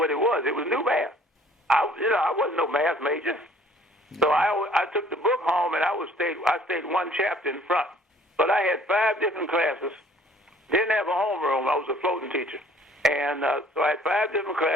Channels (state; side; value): normal; both; correlation 0.56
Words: it was. It was new math. I wasn't no math major. So I took the book home and I stayed one chapter in front. But I had 5 different classes. Didn't have a homeroom. I was a floating teacher. And so I had 5 different